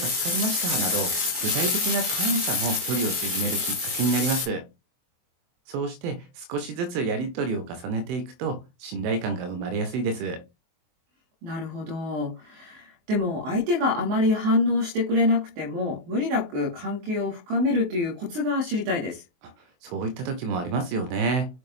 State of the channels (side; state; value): left; late; 23 ms